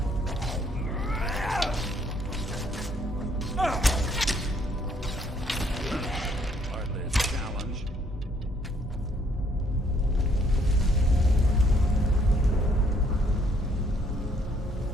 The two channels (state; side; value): normal; both; correlation 0.67